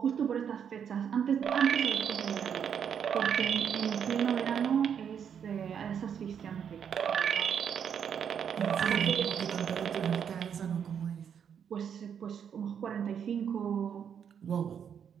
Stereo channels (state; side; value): quieter; left; 7.9 dB